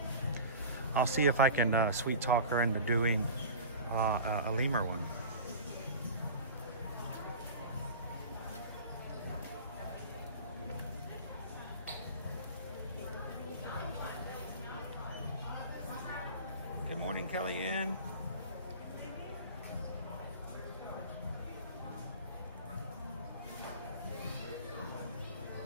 I'll see if I can sweet talk her into doing a lemur one. Good morning, Kellyanne.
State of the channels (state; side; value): inverted; both; correlation -0.36